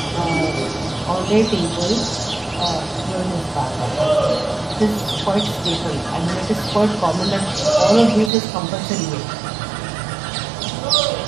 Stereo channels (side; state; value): left; drops out; at 8.3 s